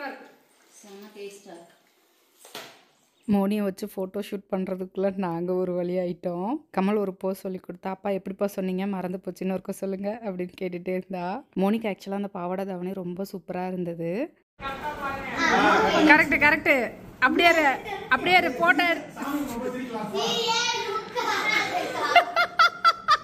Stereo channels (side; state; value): both; identical; correlation 1.00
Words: இருக்கு. செம்ம டேஸ்டா இருக்கு. மோனியை வச்சு ஃபோட்டோ ஷூட் பண்ணுறதுக்குள்ளே நாங்கள் ஒரு வழி ஆகிட்டோம். கமல் ஒரு போஸ் சொல்லி கொடுத்தா, அப்பா எப்படிப்பா சொன்னீங்க மறந்து போச்சுன்னு ஒருக்க சொல்லுங்க அப்படின்னு கேட்டுகிட்டே இருந்தா. மோனிக்கு ஆக்சுவலாக அந்த பாவாடை தாவணி ரொம்ப சூப்பராக இருந்தது. கரெக்டு அப்படியே போட்டோ